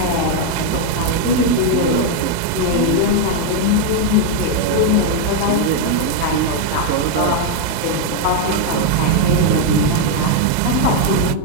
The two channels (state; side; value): different; both; correlation 0.01